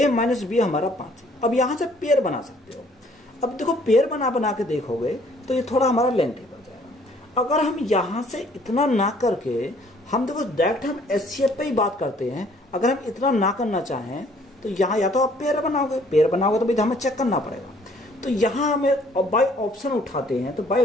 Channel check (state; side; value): normal; both; correlation 0.60